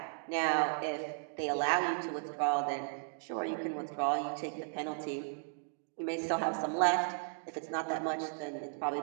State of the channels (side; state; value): left; silent; digital silence